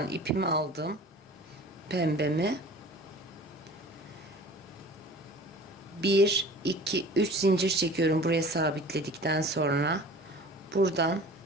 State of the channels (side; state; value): both; normal; correlation 0.43